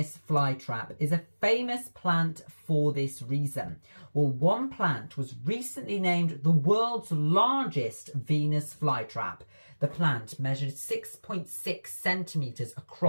flytrap is a famous plant for this reason. Well, one plant was recently named the world's largest Venus flytrap. The plant measured 6.6 centimetres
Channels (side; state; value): both; inverted; correlation -1.00